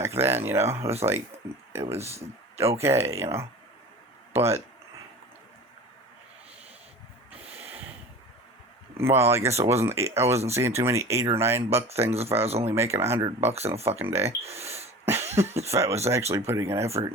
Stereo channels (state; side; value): normal; both; correlation 0.38